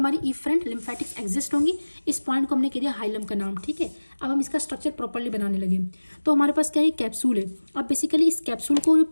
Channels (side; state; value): both; inverted; correlation -1.00